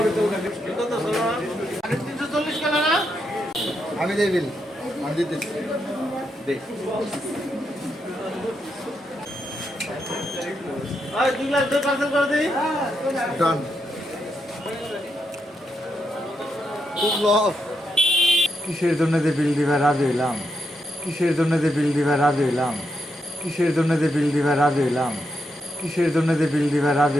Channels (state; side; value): normal; both; correlation 0.82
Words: আমি দেই বিল, আমি দিতেছি। দে। ডান। খুব লস। কিসের জন্য যে বিল দিবা রাজি হইলাম, কিসের জন্য যে বিল দিবা রাজি হইলাম, কিসের জন্য যে বিল দিবা রাজি হইলাম, কিসের জন্য যে বিল দিবা